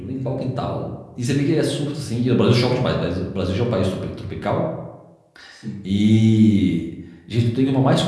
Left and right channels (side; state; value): both; identical; correlation 1.00